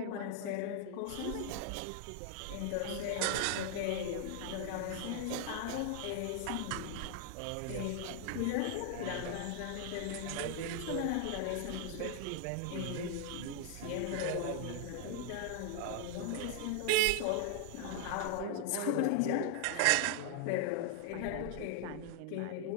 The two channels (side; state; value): both; different; correlation 0.00